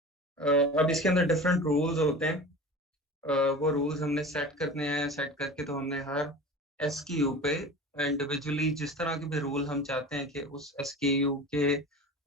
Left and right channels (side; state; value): both; normal; correlation 0.35